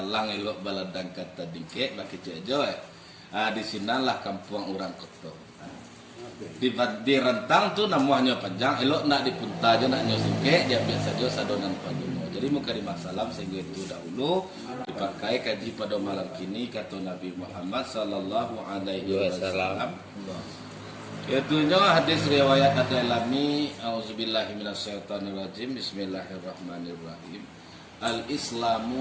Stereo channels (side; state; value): both; identical; correlation 1.00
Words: elok baladang kata dingke baki cejo. Di sinalah kampung orang kotor. Di rentang tu namanya panjang elok nak dipunta aja nak nyosike dia biasa saja sadonan paduno. Jadi muka di masalam sehingga itu dahulu dipakai kaji pada malam kini kata Nabi Muhammad sallallahu alaihi wasallam. Yaitunya hadis riwayat Ad-Dailami auzubillahi minasyaitonirrajim bismillahirrahmanirrahim.